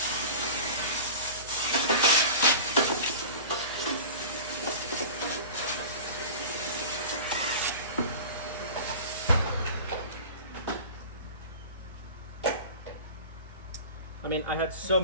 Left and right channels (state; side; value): inverted; both; correlation -0.36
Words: I mean, I had so